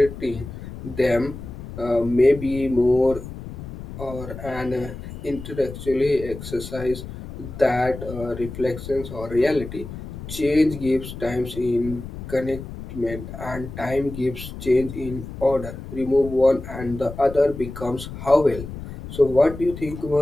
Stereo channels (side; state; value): left; noise; rumble, 11 dB below the sound